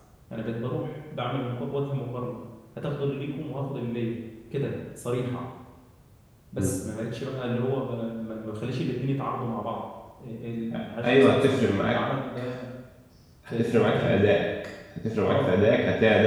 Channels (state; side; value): identical; both; correlation 1.00